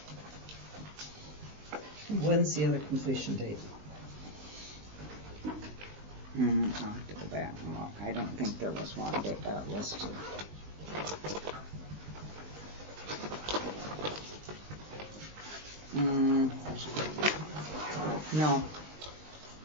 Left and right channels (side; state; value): left; late; 19 ms